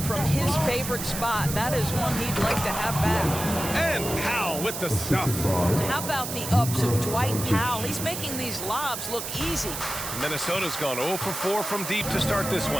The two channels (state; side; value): noise; right; hiss, 6 dB below the sound